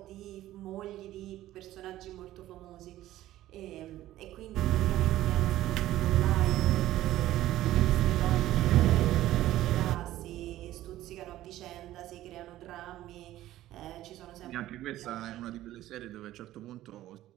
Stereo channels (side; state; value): left; quieter; 14.5 dB